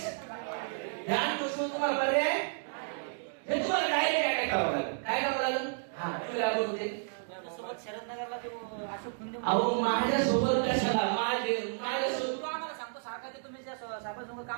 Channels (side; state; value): left; silent; digital silence